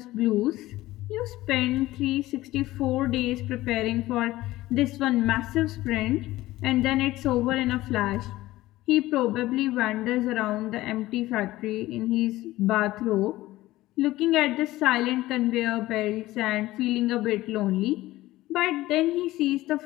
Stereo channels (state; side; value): quieter; right; 17.0 dB